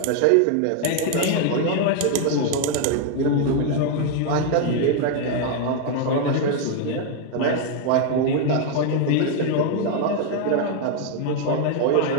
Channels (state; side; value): different; both; correlation 0.00